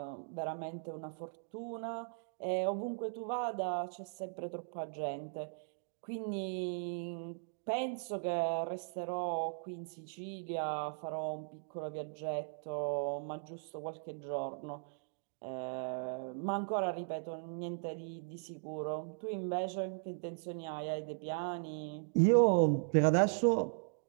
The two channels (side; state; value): left; silent; digital silence